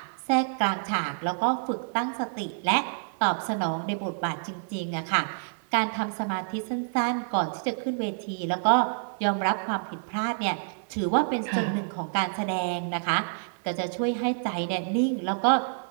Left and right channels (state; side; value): silent; left; 59 dB below the other